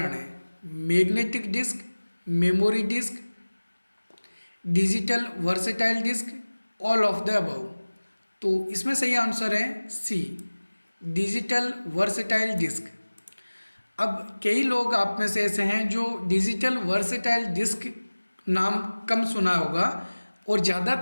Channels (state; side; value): inverted; both; correlation -1.00